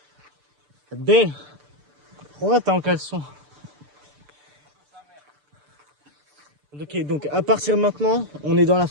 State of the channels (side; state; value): left; late; 6.8 ms